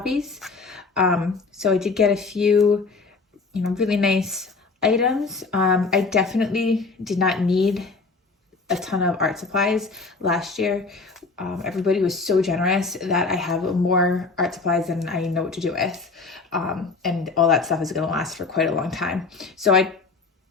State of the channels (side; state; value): right; quieter; 4.2 dB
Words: So I did get a few, really nice items. I definitely did not need a ton of art supplies last year. Everybody was so generous that I have more art supplies than I know what to do with. And all that stuff is going to last for quite a long time. So I